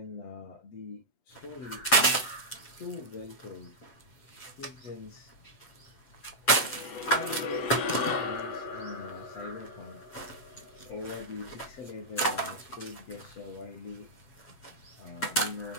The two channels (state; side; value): late; right; 7.9 ms